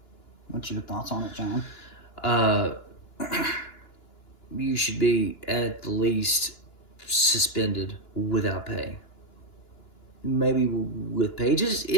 What's your thoughts on it, John? You should be at the least suspended without pay. Maybe with pages,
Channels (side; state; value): right; late; 2.9 ms